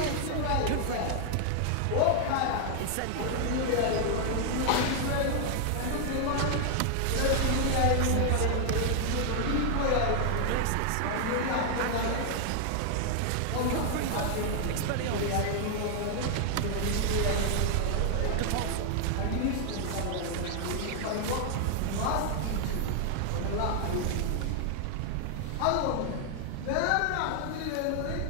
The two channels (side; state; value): both; different; correlation 0.00